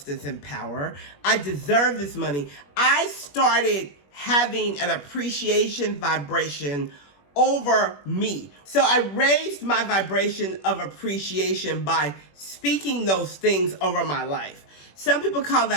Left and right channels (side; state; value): right; late; 21 ms